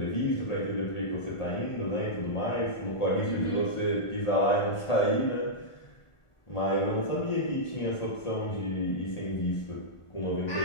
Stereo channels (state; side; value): late; right; 1.5 ms